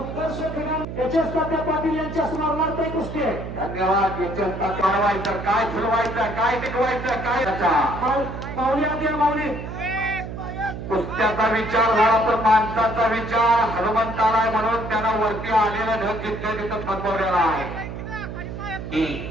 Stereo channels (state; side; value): noise; right; hum, 8 dB below the sound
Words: क्रीडा एच.एस. तात्या पाटील यांच्या स्मरणार्थ ही कुस्ती आहे. धन्यवाद. याच्यात वाढवायचं काय फुलवायचं काय टिकवायचं काय माऊली आधी माऊली कुस्त्याचा विचार झाला तर माणसाचा विचार हनुमंताला आहे म्हणून त्यानं वरती आलेला ढग जिथल्या तिथं थांबवलेला आहे.